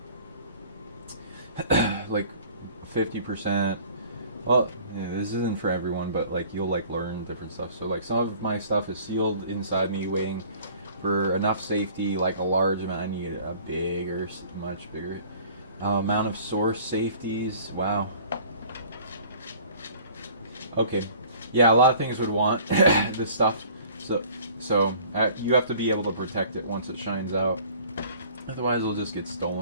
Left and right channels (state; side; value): inverted; both; correlation -0.50